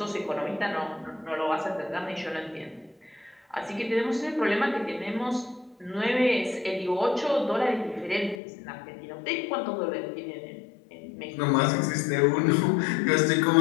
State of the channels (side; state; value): right; drops out; at 8.4 s